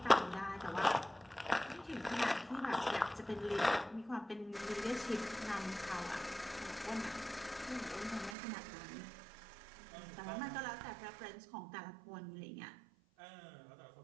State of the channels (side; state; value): left; drops out; at 8.3 s